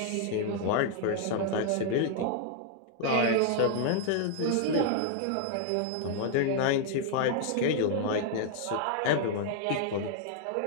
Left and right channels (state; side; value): different; both; correlation 0.00